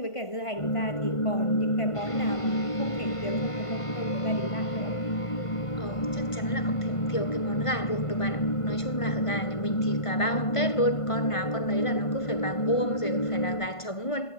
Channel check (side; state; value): right; late; 1.5 ms